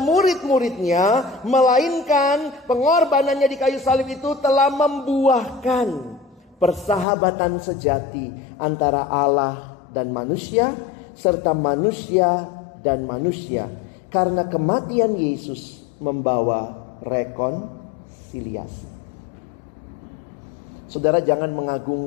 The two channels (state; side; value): drops out; right; at 7.1 s